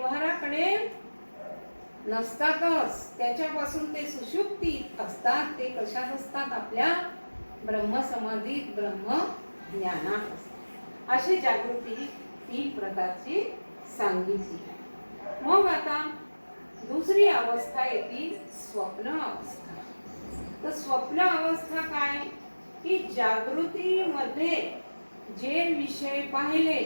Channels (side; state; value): both; inverted; correlation -1.00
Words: नसतातच, त्याच्यापासून ते सुषुप्तीत असतात. ते कशात असतात? आपल्या ब्रह्मसमाधीत, ब्रह्म ज्ञानात असतात. अशी जागृती 3 प्रकारची सांगितली. मग आता दुसरी अवस्था येते स्वप्न अवस्था. तर स्वप्न अवस्था काय की जागृतीमध्ये जे विषय पाहिले,